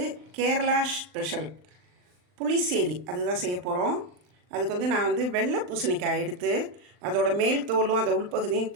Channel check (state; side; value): late; left; 39 ms